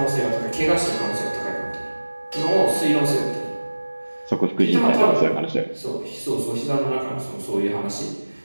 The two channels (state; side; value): inverted; both; correlation -1.00